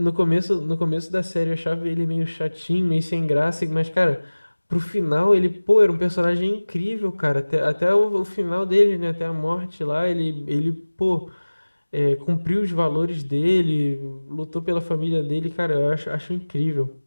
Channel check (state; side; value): inverted; both; correlation -1.00